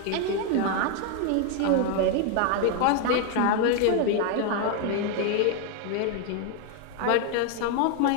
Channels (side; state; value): both; different; correlation 0.01